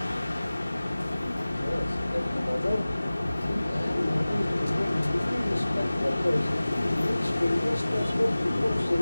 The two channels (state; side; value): inverted; both; correlation -0.98